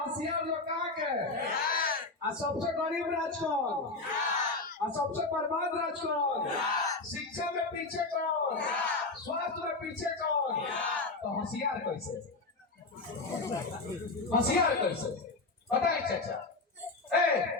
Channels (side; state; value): right; quieter; 3.5 dB